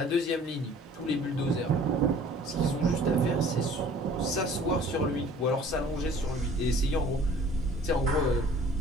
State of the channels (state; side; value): normal; both; correlation 0.51